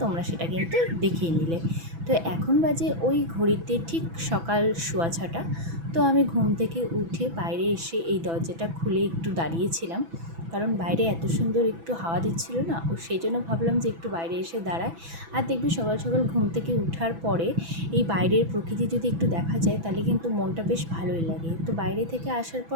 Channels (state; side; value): late; left; 6.0 ms